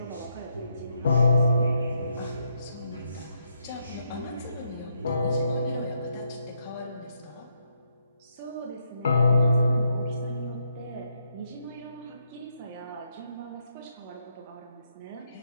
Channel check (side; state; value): both; inverted; correlation -0.78